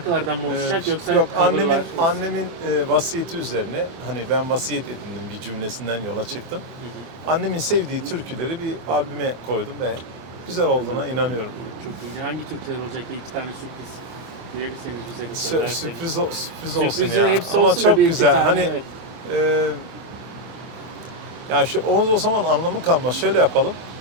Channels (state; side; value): late; left; 26 ms